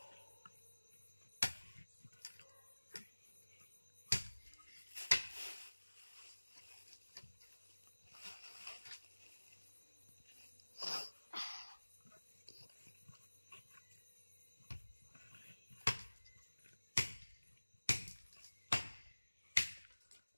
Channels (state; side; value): inverted; both; correlation -1.00